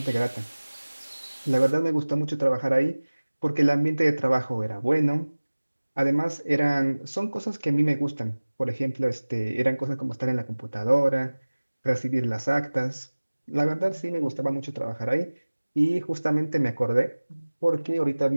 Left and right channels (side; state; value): both; inverted; correlation -1.00